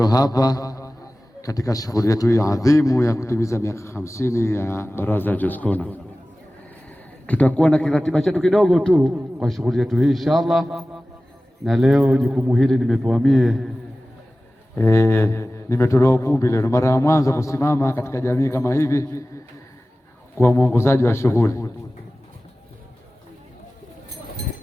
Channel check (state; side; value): normal; both; correlation 0.97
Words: hapa katika shughuli yetu hii adhimu ya kutimiza miaka 50 ya Baraza la Jaskona. Tutakuwa na kiratiba chetu kidogo tu kwa shughuli yetu hii inshallah, na leo jukumu hili nimepewa mie. Nimetolewa ukumbi leo, mara ya mwanzo kusimama katika jamii kama hivi kwa mwongozaji wa shughuli.